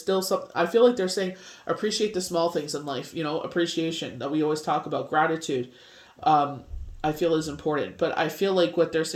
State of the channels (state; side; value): identical; both; correlation 1.00